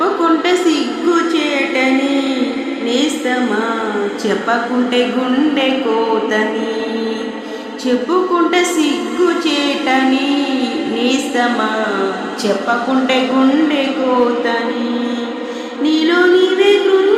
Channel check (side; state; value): both; identical; correlation 1.00